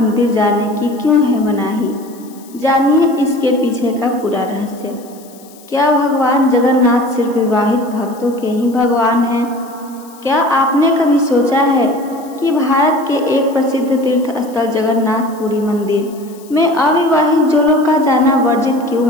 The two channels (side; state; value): left; noise; hiss, 24 dB below the sound